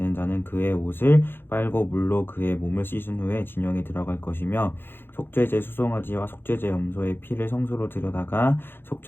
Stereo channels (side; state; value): right; late; 0.10 ms